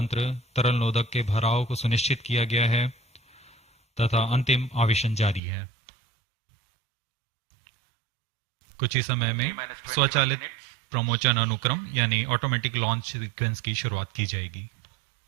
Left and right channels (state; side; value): drops out; left; at 5.4 s